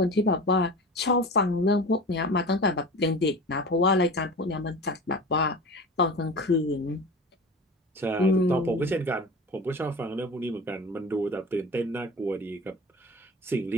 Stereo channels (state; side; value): normal; both; correlation 0.35